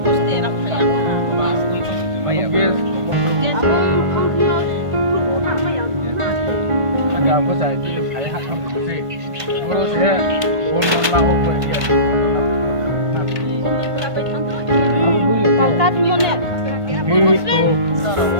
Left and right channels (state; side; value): late; left; 1.5 ms